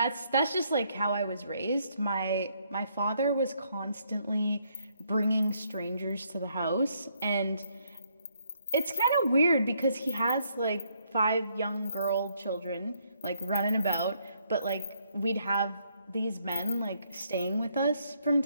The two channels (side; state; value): both; inverted; correlation -0.71